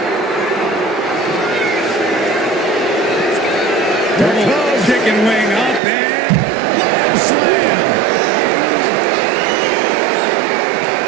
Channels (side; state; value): left; drops out; at 5.8 s